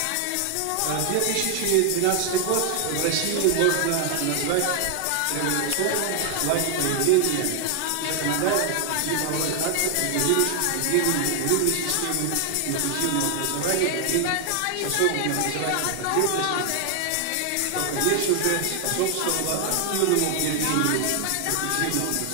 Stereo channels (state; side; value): different; both; correlation 0.00